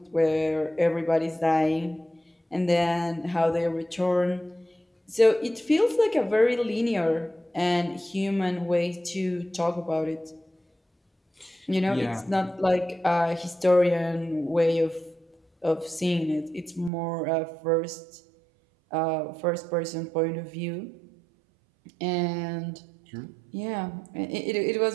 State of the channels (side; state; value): left; drops out; at 16.9 s